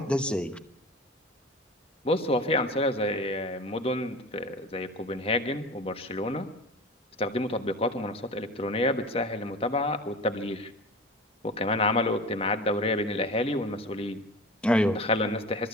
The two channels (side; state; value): both; normal; correlation 0.34